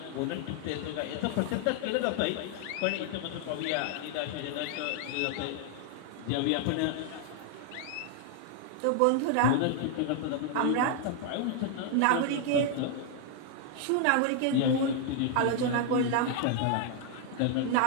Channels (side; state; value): both; different; correlation 0.00